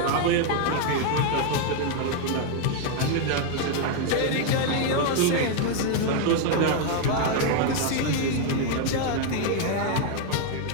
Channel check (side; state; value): both; different; correlation 0.00